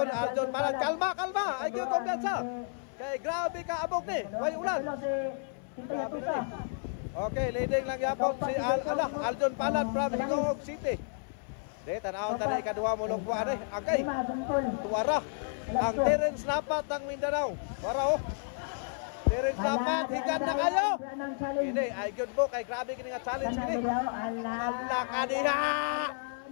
Aljon Palat. Kalma. Ay gyud kumpiyansa. Kay grabe ka abog ni. Way ulan. Okay, leading lang yapon si Aljon Palat from Hingog City. De tanaw tani kadua mo lugwa ani. Okay. Tuwara ang Terence Napat ng Mindanao. Para oh. Terence Napat higan na kayo. Ini ay gyud mo kay grabe kini nga challenge kini. Allah ka diha.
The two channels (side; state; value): right; silent; 57 dB below the other